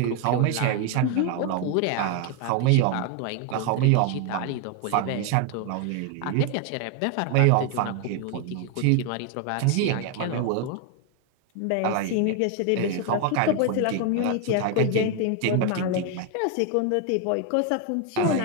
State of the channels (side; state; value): both; different; correlation 0.01